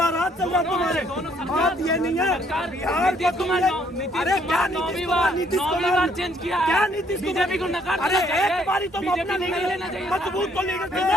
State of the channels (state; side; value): normal; both; correlation 0.66